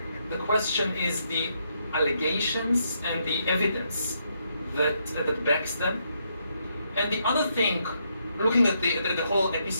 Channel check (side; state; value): both; inverted; correlation -0.77